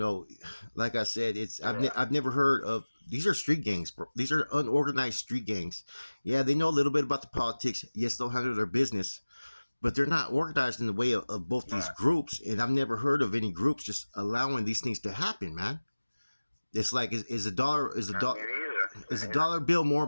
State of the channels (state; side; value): inverted; both; correlation -1.00